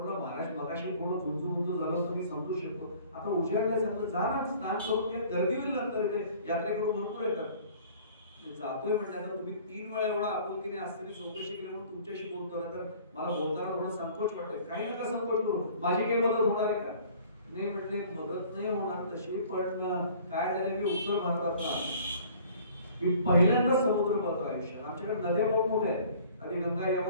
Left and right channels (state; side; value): inverted; both; correlation -0.51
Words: महाराज मगाशी थोडं गुंजू झालं तुम्ही समजू शकतो, आता उजाडलं चांगलं, जा ना स्नान करून घ्या. गर्दी होईल नंतर, इथे यात्रेकडून भरपूर येतात. जातोय म्हटलं, आता तुम्ही 3 वेळा एवढा आपुलकीने असताना चौकशी केली म्हणून तुमच्याशी बोलतो ना, तर मला बोलताना थोडं संकोच वाटतंय. काही नका संकोच करू, माझी काही मदत होणार आहे का? नाही म्हटले, मदत नाही होणार तशी, पण काय झालं, मी उत्तर भारतातला मी पहिल्यांदा समुद्र पाहतो आयुष्यात. आमच्याकडे नद्या बहुत मोठ्या आहेत, आणि गंगा